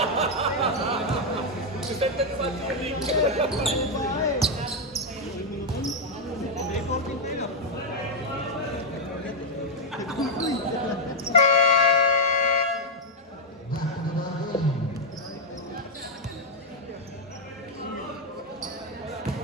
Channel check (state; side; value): normal; both; correlation 0.00